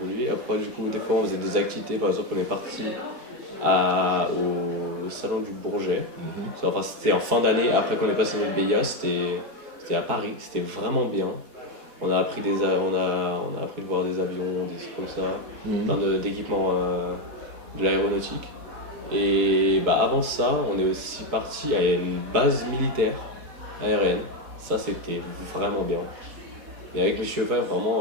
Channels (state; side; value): late; left; 4.1 ms